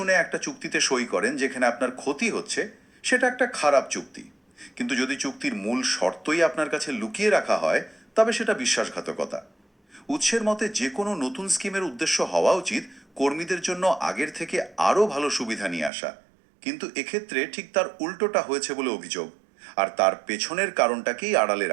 একটা চুক্তিতে সই করেন যেখানে আপনার ক্ষতি হচ্ছে সেটা একটা খারাপ চুক্তি, কিন্তু যদি চুক্তির মূল শর্তই আপনার কাছে লুকিয়ে রাখা হয় তবে সেটা বিশ্বাসঘাতকতা। উৎসের মতে যে কোনো নতুন স্কিমের উদ্দেশ্য হওয়া উচিত কর্মীদের জন্য আগের থেকে আরও ভালো সুবিধা নিয়ে আসা, কিন্তু এক্ষেত্রে ঠিক তার উল্টোটা হয়েছে বলে অভিযোগ, আর তার পেছনের কারণটাকেই আড়ালে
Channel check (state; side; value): drops out; left; at 15.9 s